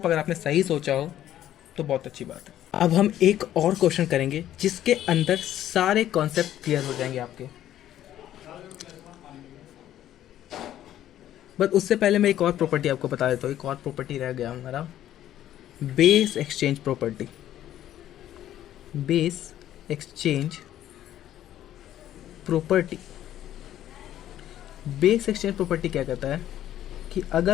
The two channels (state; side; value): quieter; right; 12.1 dB